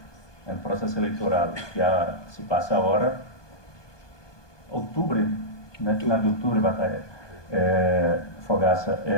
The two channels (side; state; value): right; late; 1.2 ms